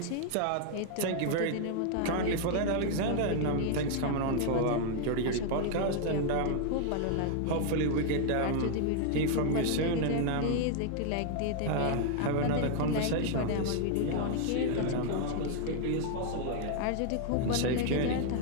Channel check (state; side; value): different; both; correlation 0.00